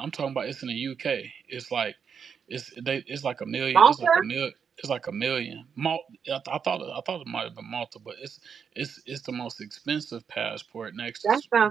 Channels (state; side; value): quieter; left; 6.8 dB